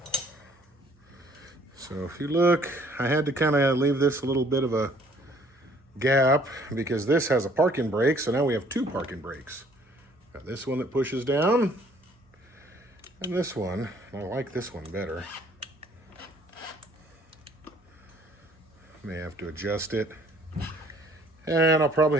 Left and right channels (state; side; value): normal; both; correlation 0.59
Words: So if you look, I had to kind of leave this a little bit of a gap because this has a parking brake, so now we have two parking brakes. Got this one that pushes down, and this one. I like this one better. May have to adjust it. And I'll probably